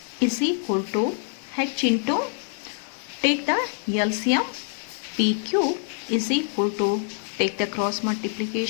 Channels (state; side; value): silent; right; 60 dB below the other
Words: is equal to H into, take the LCM, PQ is equal to, take the cross